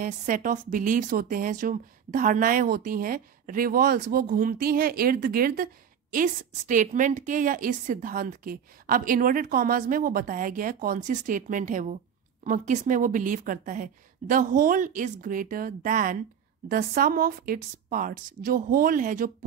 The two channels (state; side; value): quieter; left; 8.1 dB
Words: सेट ऑफ बिलीव्स होते हैं, जो धारणाएं होती हैं, रिवॉल्व्स, वो घूमती हैं इर्द गिर्द इस स्टेटमेंट के या इस सिद्धांत के। अब इन्वर्टेड कॉमास में वो बताया गया है कौन सी स्टेटमेंट है वो, किस में वो बिलीव करता है। The whole is greater than the sum of its parts, जो होल है, जो